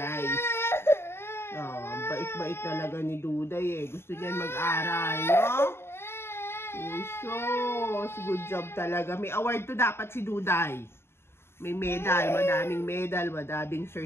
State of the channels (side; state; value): right; late; 0.12 ms